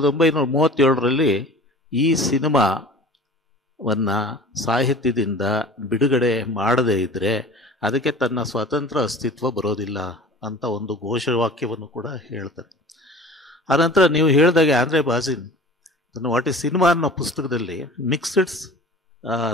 ಈ ಸಿನಿಮಾವನ್ನು ಸಾಹಿತ್ಯದಿಂದ ಬಿಡುಗಡೆ ಮಾಡದೇ ಇದ್ದರೆ ಅದಕ್ಕೆ ತನ್ನ ಸ್ವತಂತ್ರ ಅಸ್ತಿತ್ವ ಬರೋದಿಲ್ಲ ಅಂತ ಒಂದು ಘೋಷವಾಕ್ಯವನ್ನು ಕೂಡ ಹೇಳ್ತಾರೆ. ಆನಂತರ ನೀವು ಹೇಳಿದಾಗೆ ಆಂಡ್ರೆ ಬಾಜಿನ್ ವಾಟ್ ಈಸ್ ಸಿನಿಮಾ ಅನ್ನೋ ಪುಸ್ತಕದಲ್ಲಿ ಮಿಕ್ಸ್ಡ್ಸ್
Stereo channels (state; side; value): normal; both; correlation 0.42